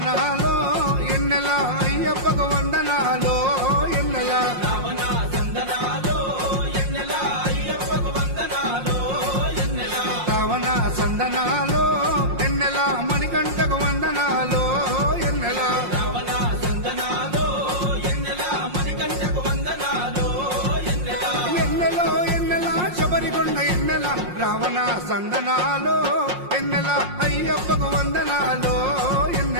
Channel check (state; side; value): late; left; 5.6 ms